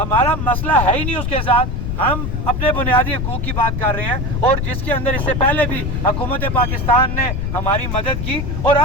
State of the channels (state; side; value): noise; left; rumble, 2 dB below the sound